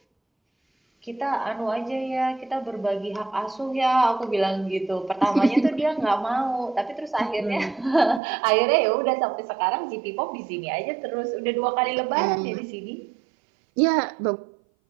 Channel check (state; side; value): drops out; left; at 8.2 s